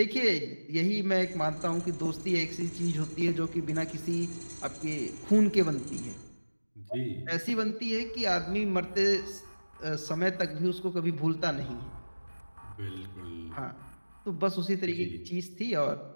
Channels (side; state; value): both; inverted; correlation -1.00